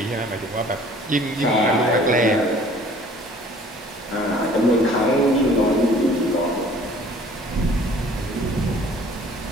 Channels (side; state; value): both; normal; correlation 0.52